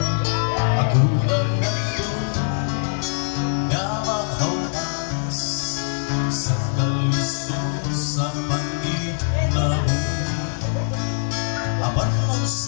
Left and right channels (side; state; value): right; silent; digital silence